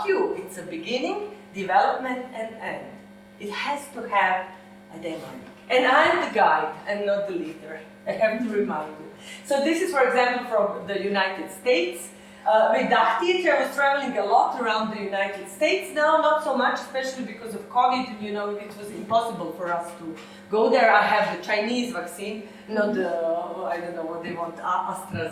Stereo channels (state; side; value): identical; both; correlation 1.00